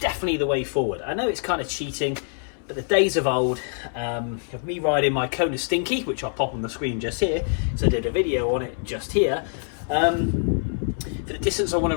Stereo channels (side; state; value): right; silent; 62 dB below the other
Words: the way forward. I know it's kind of cheating, but the days of old of me riding my Kona Stinky, which I'll pop on the screen just here, so I did a video on it just here, for the distance I want